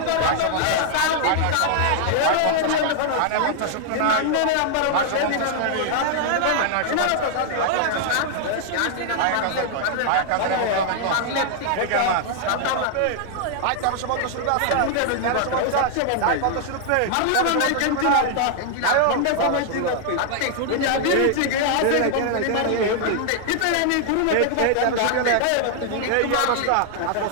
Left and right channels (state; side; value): different; both; correlation 0.00